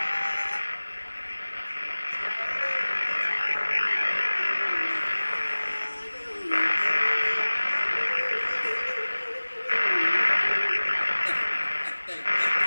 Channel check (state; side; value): inverted; both; correlation -1.00